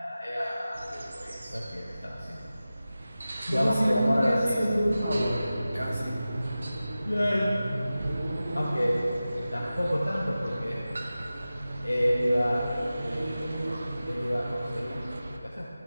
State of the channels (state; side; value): inverted; both; correlation -0.95